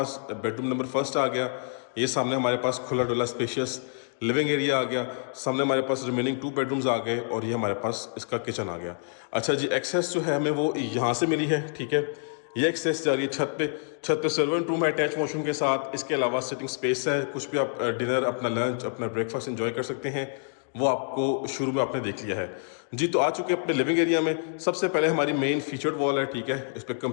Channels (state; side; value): silent; right; digital silence